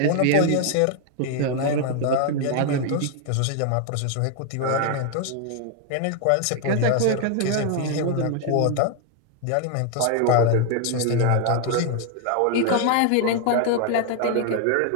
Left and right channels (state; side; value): different; both; correlation 0.00